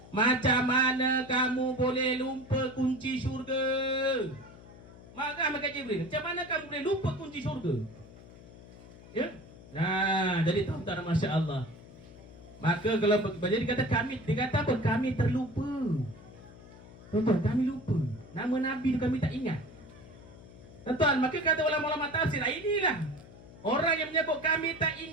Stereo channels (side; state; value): left; noise; hum, 19 dB below the sound